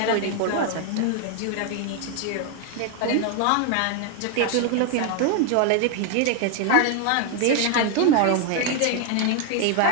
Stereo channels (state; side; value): different; both; correlation 0.01